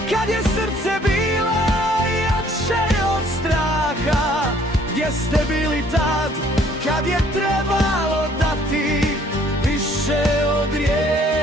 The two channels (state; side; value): normal; both; correlation 0.60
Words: kad je srce bilo jače od straha? Gdje ste bili tad, kad je trebalo dati više od